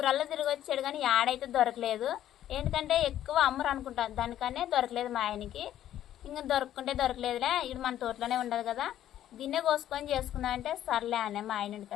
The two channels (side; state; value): right; quieter; 11.9 dB